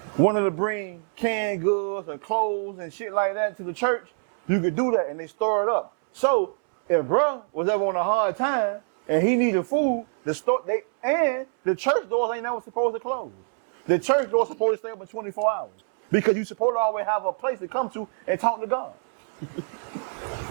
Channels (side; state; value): left; silent; 62 dB below the other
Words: wanted to bring canned goods and clothes and shit like that to the church, you could do that and they store it up. So if bruh was ever on a hard time and he needed food, the church doors ain't never supposed to close. The church doors supposed to stay open 24 hours because you supposed to always have a place to come to and talk to God.